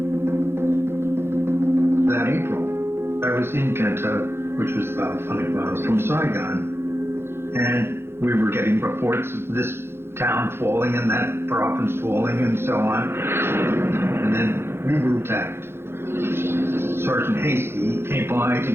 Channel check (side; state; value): left; late; 0.12 ms